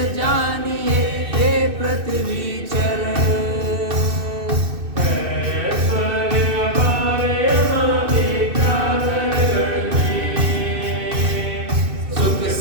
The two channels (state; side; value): late; left; 2.6 ms